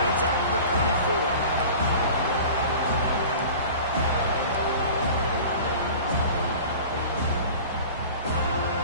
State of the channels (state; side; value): inverted; both; correlation -0.39